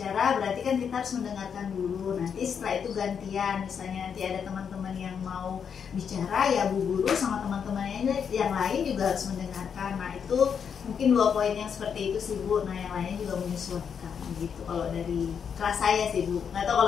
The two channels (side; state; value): right; quieter; 7.1 dB